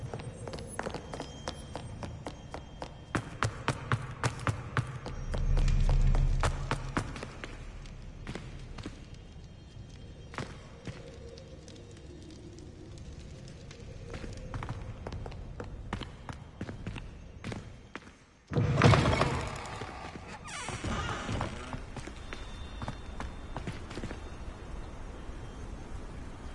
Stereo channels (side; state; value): both; identical; correlation 1.00